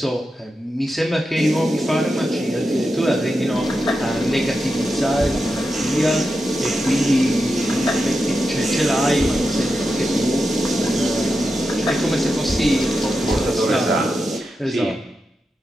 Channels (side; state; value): both; normal; correlation 0.89